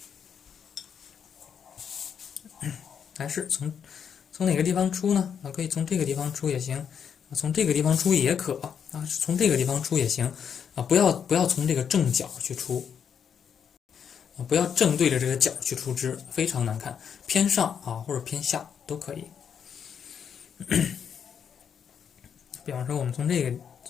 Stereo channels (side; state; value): right; quieter; 7.6 dB